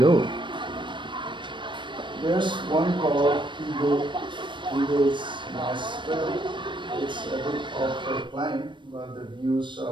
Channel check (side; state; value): left; late; 0.23 ms